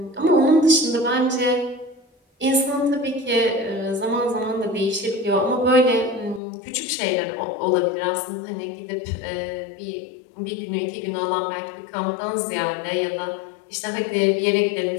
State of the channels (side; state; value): right; drops out; at 6.4 s